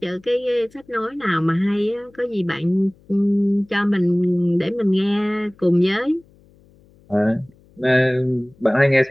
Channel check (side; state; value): left; noise; hum, 30 dB below the sound